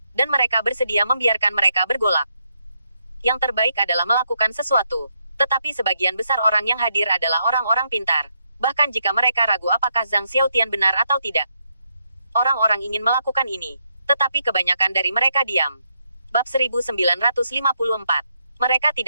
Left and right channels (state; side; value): inverted; both; correlation -0.79